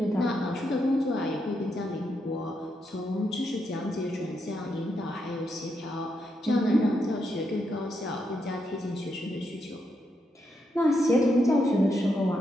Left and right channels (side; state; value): both; normal; correlation 0.81